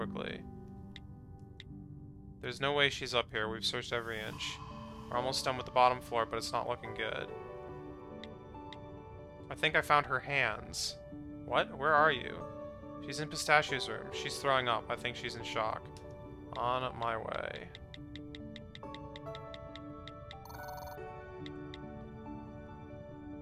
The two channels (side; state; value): both; identical; correlation 1.00